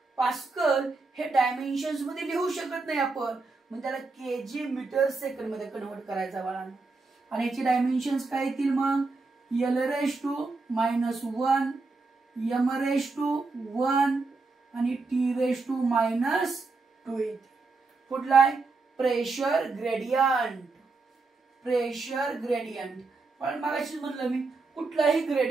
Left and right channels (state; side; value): quieter; left; 3.8 dB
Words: पास्कल हे डायमेन्शन्स मध्ये लिहू शकत नाही आपण, मग त्याला केजी मीटर सेकंड मध्ये कन्वर्ट करायचा बाळांनो. आणि याची डायमेन्शन्स काय येतील मग, L⁻⁻1 M⁻⁻1 आणि T⁻⁻2 येते. पुढला आहे प्रेशर ग्रेडियंट. प्रेशर ग्रेडियंट पण मगाशीच म्हणलं मी, कुठलाही